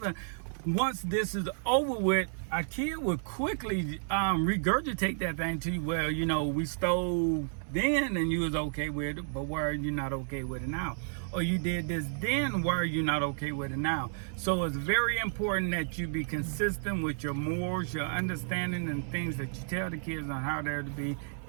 Once this is over with, a kid would quickly regurgitate that thing to you. Well, you know, we stole then and you was okay with it, but why are you not okay with it now? Or you did this then, why are you not okay with it now? So it's very important that you be consistent with your morals, your understanding, and things that you tell the kids on how they're to be.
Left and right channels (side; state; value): left; silent; 57 dB below the other